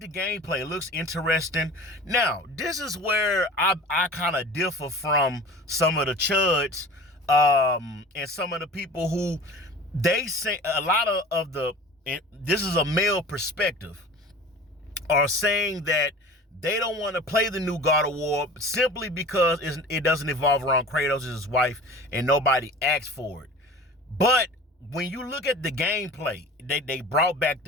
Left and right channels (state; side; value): normal; both; correlation 0.40